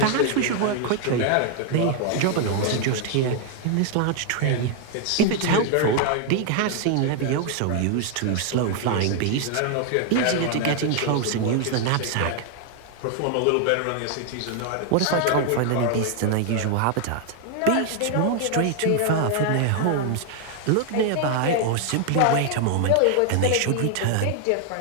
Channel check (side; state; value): both; different; correlation 0.00